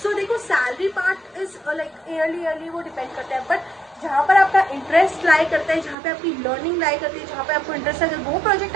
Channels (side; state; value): left; drops out; at 6.0 s